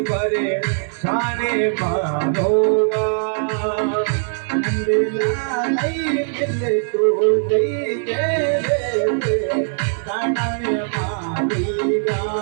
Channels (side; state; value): left; silent; 65 dB below the other